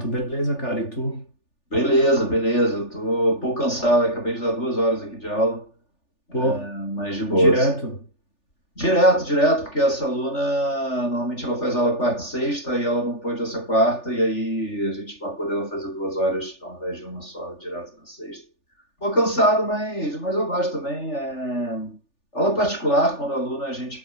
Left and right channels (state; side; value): late; right; 3.4 ms